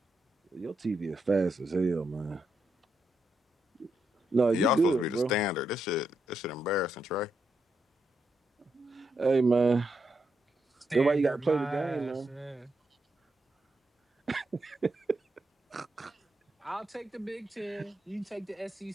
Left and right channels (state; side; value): normal; both; correlation 0.82